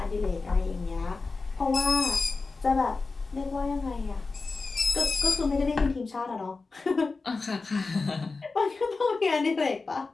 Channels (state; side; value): quieter; right; 4.0 dB